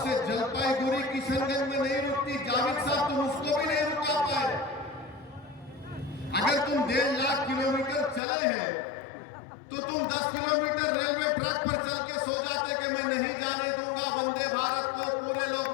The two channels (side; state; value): right; drops out; at 8.2 s